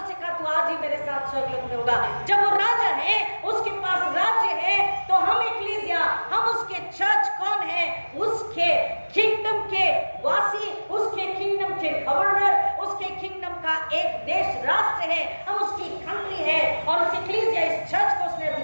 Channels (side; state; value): both; inverted; correlation -1.00